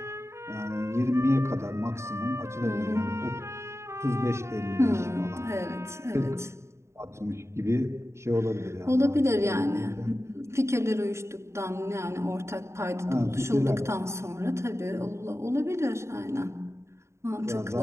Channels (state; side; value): late; left; 0.13 ms